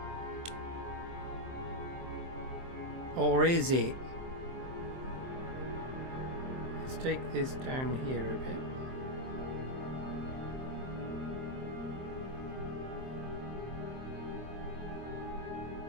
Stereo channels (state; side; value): late; left; 23 ms